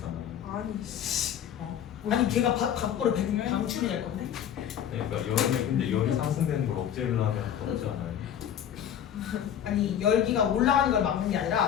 아니 걔가 밖으로 방출이 될 건데? 네, 그러니까 여름에 근데 열이 상승되는 걸 억제를 하면 더지 않아요? 아니 열기가 올라가는 걸 막는 게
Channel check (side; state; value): right; quieter; 9.5 dB